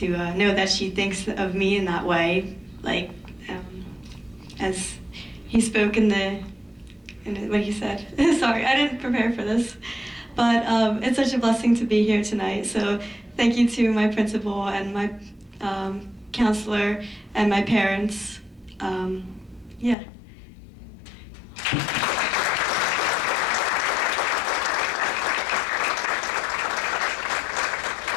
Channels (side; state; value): right; drops out; at 20.0 s